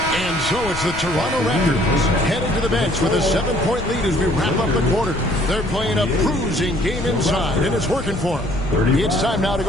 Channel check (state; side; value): noise; left; rumble, 10 dB below the sound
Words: And so it's the Toronto Raptors heading to the bench with a 7-point lead as we wrap up the quarter. They're playing a bruising game inside, and it's working for them. It's time now to